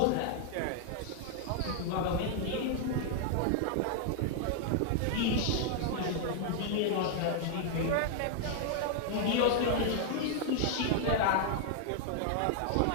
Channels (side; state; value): both; different; correlation 0.00